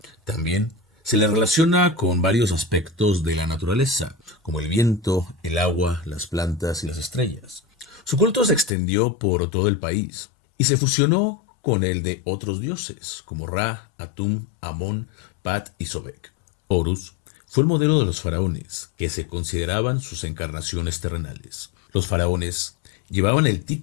También se le relaciona con varios aspectos de la naturaleza, como el viento, el agua, las plantas y las estrellas. Su culto se extendió por todo el país y se fusionó con el de otros dioses, como Ra, Atum, Amón, Pat y Sobek. Horus fue el modelo de los faraones, que se consideraban sus encarnaciones terrenales. Los faraones llevaban el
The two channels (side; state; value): right; drops out; at 8.7 s